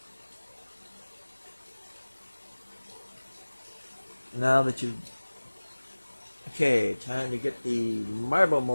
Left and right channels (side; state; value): both; inverted; correlation -1.00